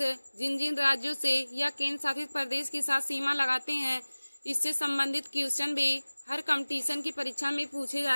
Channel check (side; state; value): both; inverted; correlation -1.00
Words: जिन जिन राज्यों से या केंद्र शासित प्रदेश के साथ सीमा लगाते हैं इससे संबंधित क्वेश्चन भी हर कंपटीशन की परीक्षा में पूछे